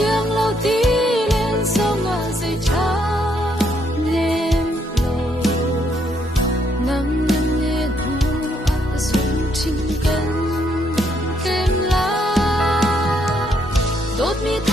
lâu ti lên song a dây cha nem lâu nam nam ne thu a sung chin kan kem la đốt mi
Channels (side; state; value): both; normal; correlation 0.73